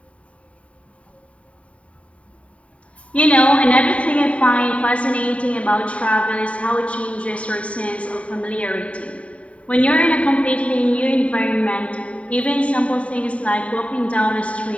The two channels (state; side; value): late; right; 0.065 ms